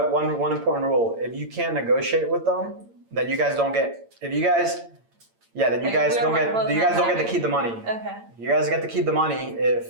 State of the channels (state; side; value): late; left; 8.8 ms